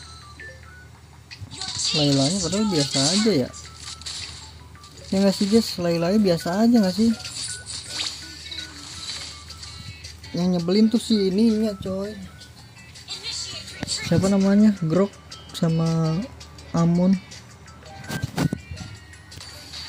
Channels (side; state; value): both; identical; correlation 1.00